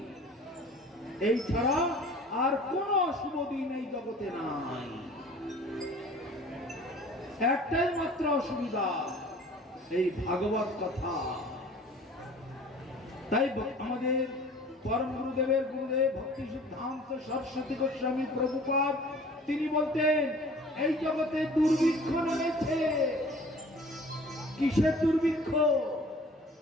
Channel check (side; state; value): both; normal; correlation 0.47